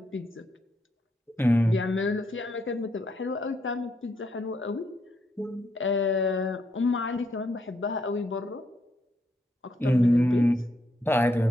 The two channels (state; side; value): normal; both; correlation 0.77